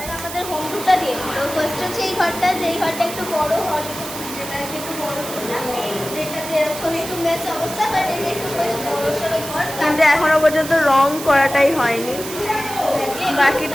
আমাদের হোম টুরটা দিয়ে দিল। ফার্স্ট হচ্ছে এই ঘরটা, যেই ঘরটা একটু বড় হল, যেটাকে একটু বড় যেটাতে এরকম একটু মেস অবস্থা, বাট এটা একটু বেশ বড় সড়ো ঘর। কিন্তু এখনো পর্যন্ত রং করাটাই হয়নি, বাকি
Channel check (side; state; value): right; noise; hiss, 10 dB below the sound